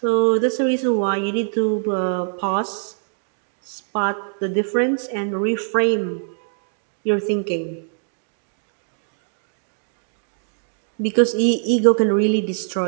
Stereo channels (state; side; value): silent; left; digital silence